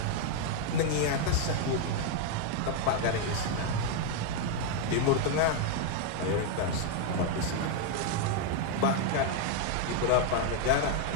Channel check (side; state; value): both; different; correlation 0.00